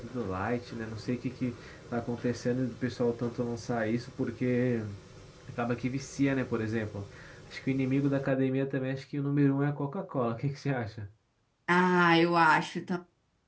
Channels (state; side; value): identical; both; correlation 1.00